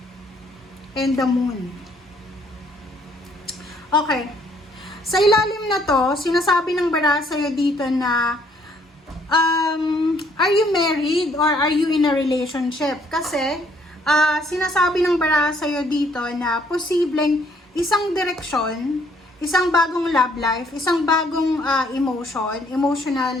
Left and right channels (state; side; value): normal; both; correlation 0.65